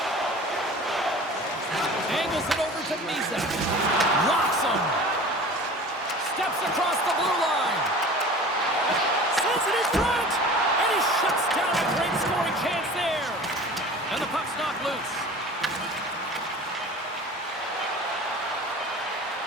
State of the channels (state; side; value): normal; both; correlation 0.40